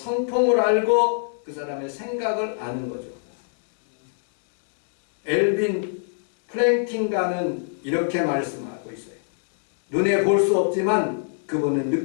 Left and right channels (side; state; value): right; silent; digital silence